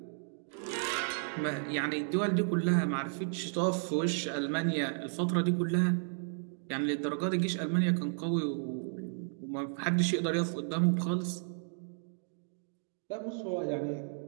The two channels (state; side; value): silent; left; digital silence